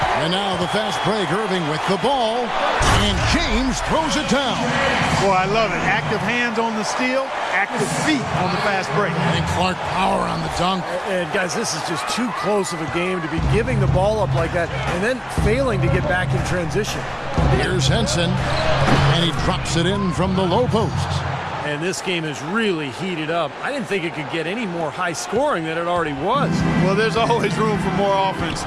And now the fast break. Irving with the ball. And James throws it down. Boy, I love it. Active hands on the steal, active feet on the fast break. And Clark power on the dunk. And guys, this is just too close of a game to be giving the ball up like that and then failing to get back in transition. Here's Henson. And he drops it in from the low post. And this game is really heated up. I didn't think it could get any more high scoring than it already was. Well, there's always room for more offense,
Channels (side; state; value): both; identical; correlation 1.00